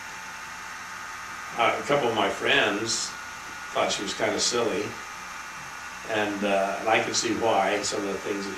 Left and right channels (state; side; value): identical; both; correlation 1.00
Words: A couple of my friends thought she was kind of silly, and I could see why, some of the things that